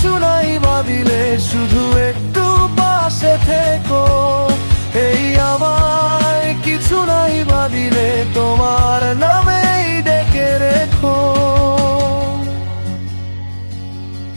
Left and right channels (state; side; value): inverted; both; correlation -1.00